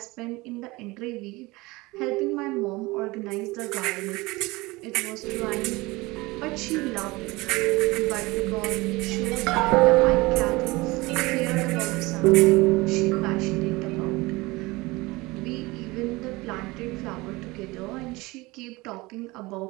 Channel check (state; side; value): quieter; left; 22.3 dB